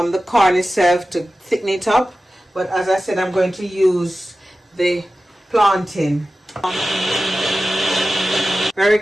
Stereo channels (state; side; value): normal; both; correlation 0.94